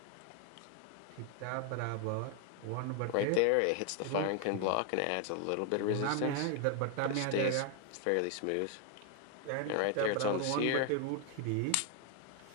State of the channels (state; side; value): different; both; correlation 0.00